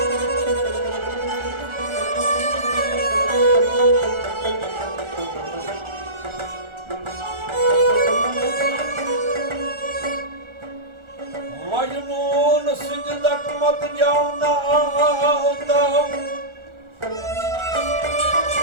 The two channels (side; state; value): left; late; 1.4 ms